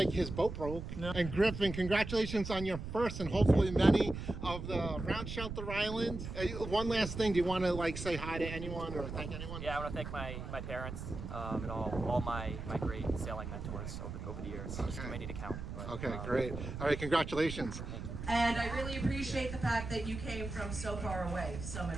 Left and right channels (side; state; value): right; noise; rumble, 7 dB below the sound